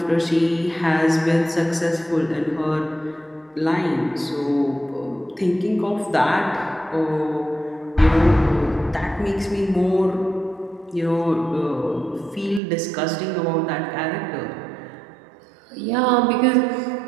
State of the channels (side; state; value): left; drops out; at 12.6 s